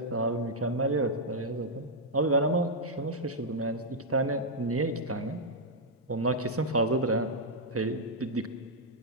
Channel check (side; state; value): both; normal; correlation -0.05